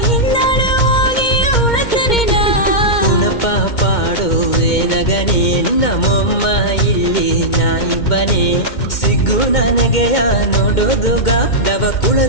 ಹಿಂದಾಡು ಹೋಗಿ ಉಳತರಿನ ಉಣಪ ಪಾಡುವೆನಗನೇ ನಿನ್ನ ಮೊಮ್ಮ ಇಲ್ಲಿ ನಾಯಿಬ್ಬನೇ ಸಿಗ್ಗು ನನಗೆಯ ನೋಡೋದುಗ ದವ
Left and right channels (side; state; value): right; late; 2.1 ms